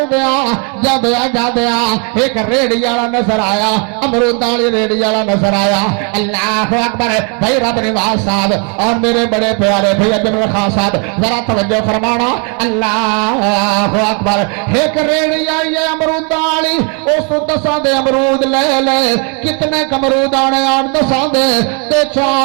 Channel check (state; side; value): quieter; left; 37.3 dB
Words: جادیا ایک ریڑی والا نظر آیا امرود والی ریڑی والا نظر آیا اللہ اکبر بھائی رب نواز صاحب اور میرے بڑے پیارے بھائی جنرل خان صاحب ذرا توجہ فرمانا اللہ اکبر ایک ریڑی آئی ہے امرود والی اس 10 دے امرود لے لے کتنے امرود آنے 10 دے تے